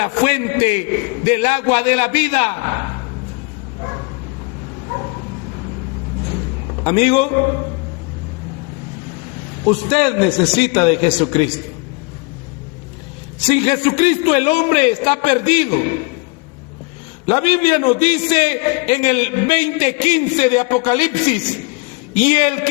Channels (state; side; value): quieter; right; 30.5 dB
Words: fuente del agua de la vida. Amigo, usted necesita de Jesucristo. Sin Jesucristo el hombre está perdido. La Biblia nos dice en el 20:15 de Apocalipsis: y el